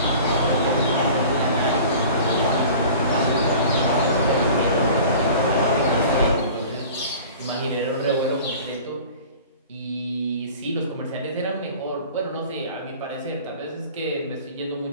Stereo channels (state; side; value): inverted; both; correlation -0.43